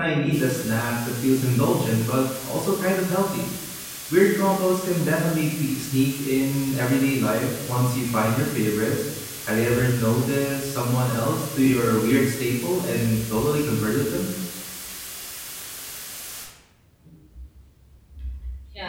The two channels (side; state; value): both; identical; correlation 1.00